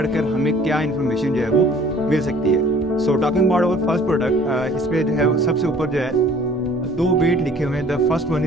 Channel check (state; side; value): normal; both; correlation 0.53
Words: हमें क्या इन्फॉर्मेशन जो है वो मिल सकती है। So talking about our first product, इस पर जो है सबसे ऊपर जो है दो वेट लिखे हुए हैं। द फर्स्ट वन